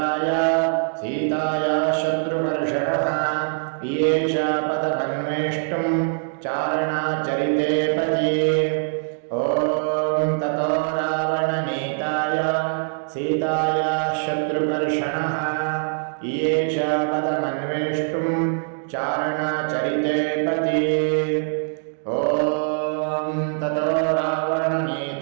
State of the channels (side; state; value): left; silent; digital silence